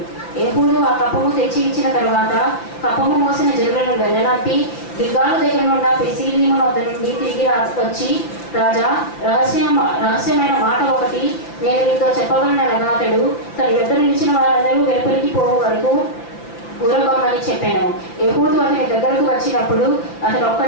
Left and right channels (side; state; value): right; late; 5.9 ms